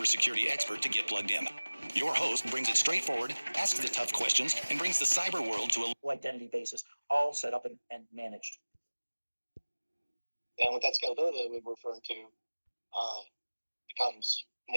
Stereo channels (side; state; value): both; inverted; correlation -1.00